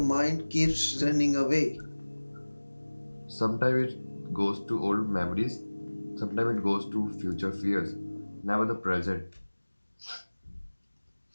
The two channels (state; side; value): inverted; both; correlation -1.00